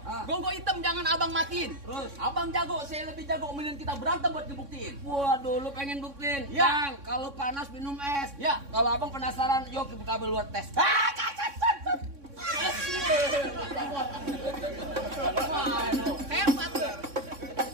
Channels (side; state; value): left; late; 3.6 ms